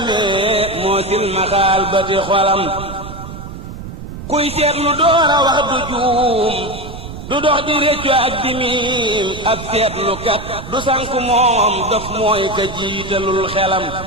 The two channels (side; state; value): right; noise; rumble, 11 dB below the sound